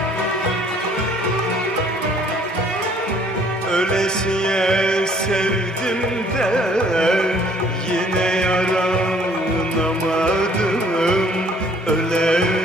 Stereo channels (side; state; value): both; normal; correlation 0.59